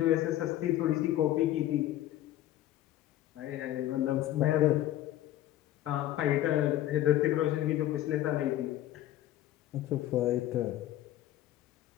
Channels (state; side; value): quieter; right; 13.7 dB